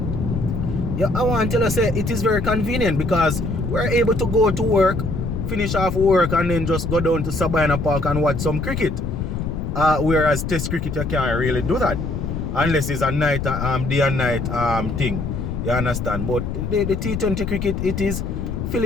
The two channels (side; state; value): left; noise; rumble, 3 dB below the sound